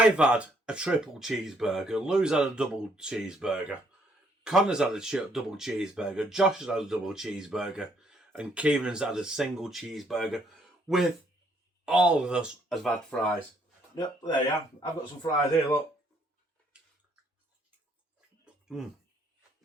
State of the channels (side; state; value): both; normal; correlation 0.68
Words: had a triple cheeseburger. Lou's had a double cheeseburger. Connor's had a double cheeseburger. Josh has had a double cheeseburger. And Kieran's had a single cheeseburger. With all of us has had fries. Yep, there you are. I've got some fries here, look.